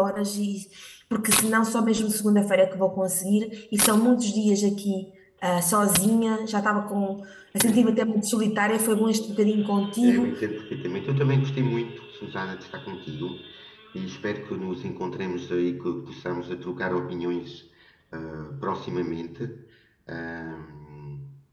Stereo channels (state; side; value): identical; both; correlation 1.00